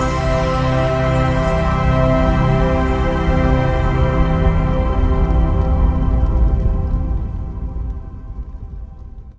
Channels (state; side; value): identical; both; correlation 1.00